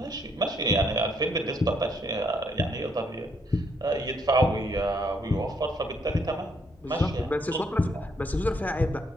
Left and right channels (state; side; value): normal; both; correlation 0.71